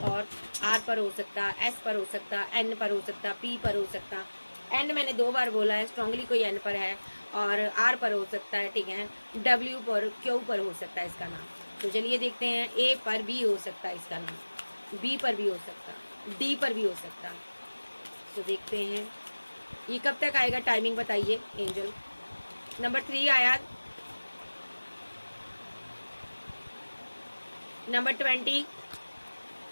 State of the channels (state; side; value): inverted; both; correlation -1.00